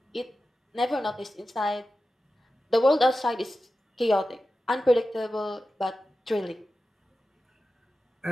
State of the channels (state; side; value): normal; both; correlation 0.93